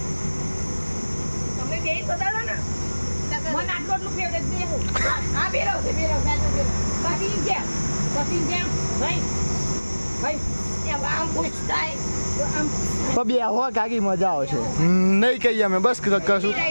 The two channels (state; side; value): inverted; both; correlation -1.00